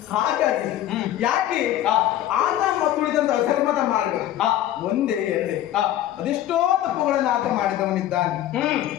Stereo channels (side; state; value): right; quieter; 12.7 dB